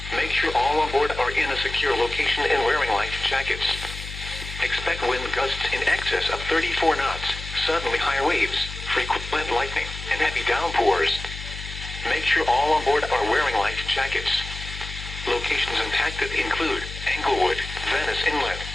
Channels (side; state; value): left; noise; hum, 10 dB below the sound